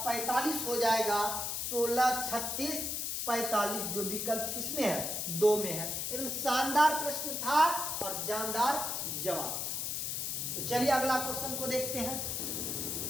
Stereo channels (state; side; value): noise; left; hiss, 2 dB below the sound